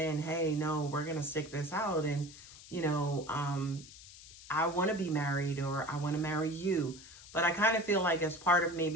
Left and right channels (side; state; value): left; noise; hiss, 18 dB below the sound